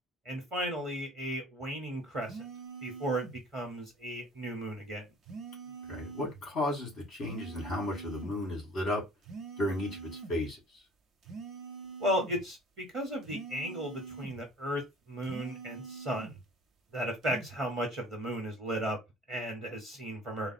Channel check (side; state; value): both; normal; correlation 0.48